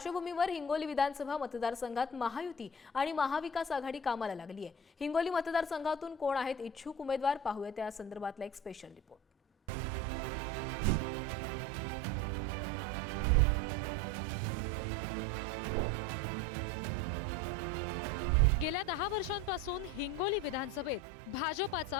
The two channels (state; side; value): normal; both; correlation 0.35